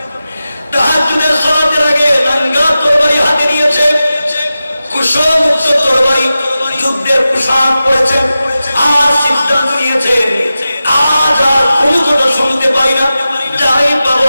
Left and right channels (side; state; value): both; inverted; correlation -0.93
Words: তাহাজ্জুদের সালাতের আগে নাঙ্গা তরবারি হাতে নিয়েছে, কুশলমুক্ত তরবারি, যুদ্ধের পোশাক পরেছেন। আর সিদ্ধান্ত নিয়েছেন, আজ আর কোনো কথা শুনতে পাই না, যাই পাবো